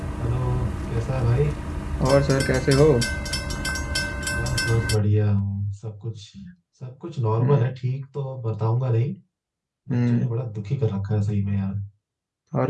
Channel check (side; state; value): both; identical; correlation 1.00